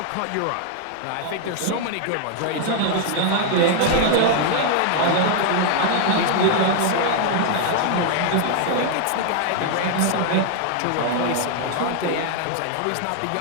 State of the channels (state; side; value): different; both; correlation 0.00